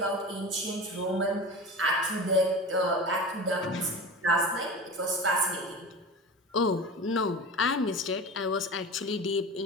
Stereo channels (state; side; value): normal; both; correlation 0.31